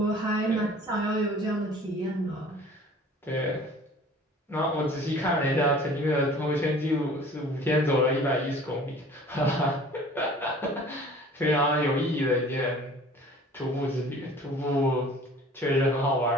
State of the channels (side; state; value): both; normal; correlation 0.48